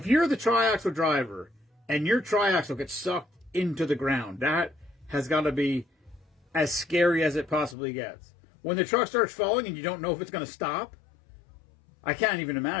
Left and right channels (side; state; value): right; drops out; at 7.8 s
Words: you're the triaxle driver and your triaxle gets sucked into the ground, that has got to be as scary as it possibly gets. When the truck starts falling and you don't know if it's going to stop, I can't even